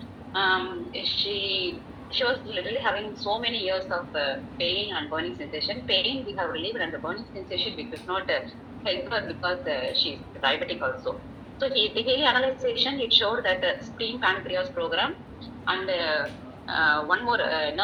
She was literally having so many years of pain and burning sensation. Pain we have relieved, and the burning sensation we could not help her because she's diabetic also. So the analyzation it showed that spleen pancreas program and one more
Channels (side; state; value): both; identical; correlation 1.00